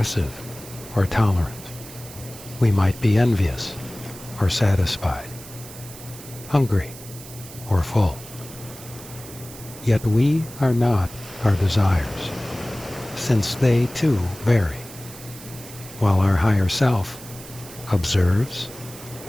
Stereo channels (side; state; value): right; noise; hiss, 16 dB below the sound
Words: or tolerant. We might be envious or satisfied, hungry or full. Yet we are not our desires, since they too vary, while our higher self observes